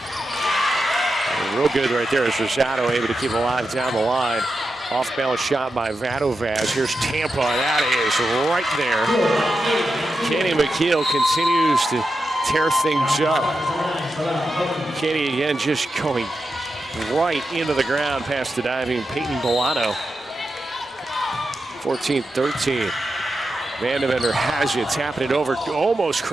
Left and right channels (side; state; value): both; normal; correlation 0.89